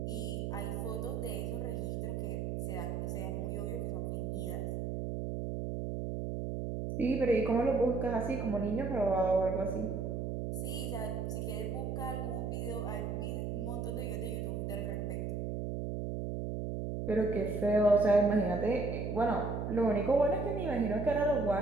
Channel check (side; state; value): right; noise; hum, 3 dB below the sound